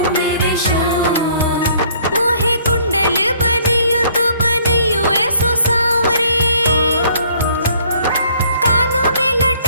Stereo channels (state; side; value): inverted; both; correlation -0.60